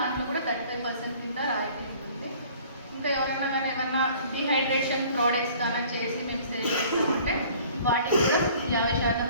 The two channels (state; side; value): inverted; both; correlation -0.51